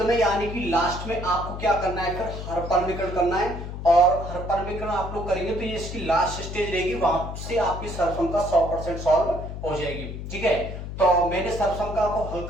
में यानी कि लास्ट में आपको क्या करना है, फिर हर परमीकरण करना है, और हर परमीकरण आप लोग करेंगे तो ये इसकी लास्ट स्टेज रहेगी, वहां से आपकी सर्वसंख्या 100% सॉल्व हो जाएगी। ठीक है, तो मैंने सर्वसंख्या को हल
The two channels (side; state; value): left; noise; hum, 8 dB below the sound